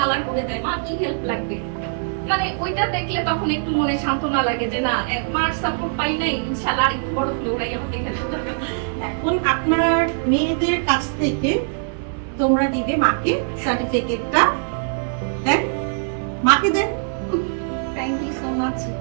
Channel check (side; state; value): left; silent; digital silence